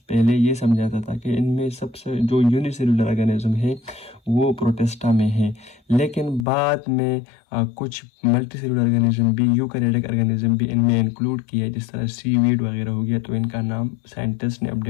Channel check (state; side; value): drops out; right; at 6.5 s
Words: पहले ये समझा जाता था कि इनमें सबसे जो यूनिसेल्युलर ऑर्गेनिज्म है वो प्रोटेस्टा में है, लेकिन बाद में कुछ मल्टीसेलुलर ऑर्गेनिज्म भी, यूकैरियोटिक ऑर्गेनिज्म भी इनमें इंक्लूड किया, जिस तरह सीवीड वगैरह हो गया, तो इनका नाम साइंटिस्ट ने